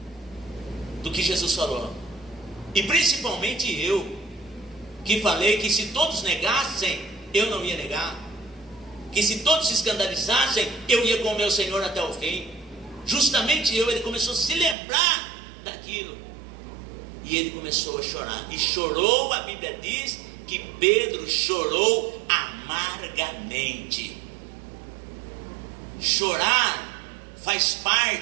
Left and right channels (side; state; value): left; drops out; at 14.8 s